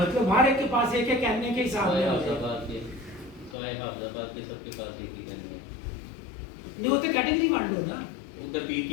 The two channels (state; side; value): drops out; right; at 3.6 s